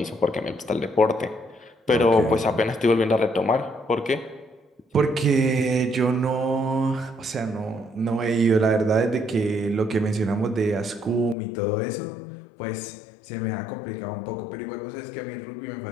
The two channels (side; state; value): right; drops out; at 11.4 s